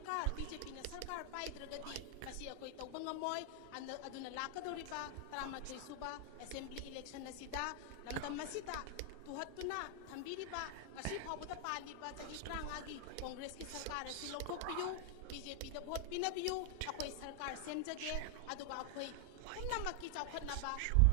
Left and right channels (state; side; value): different; both; correlation 0.00